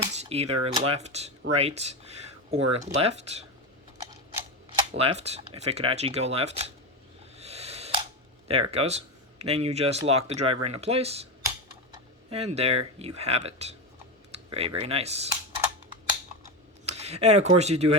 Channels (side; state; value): both; normal; correlation 0.16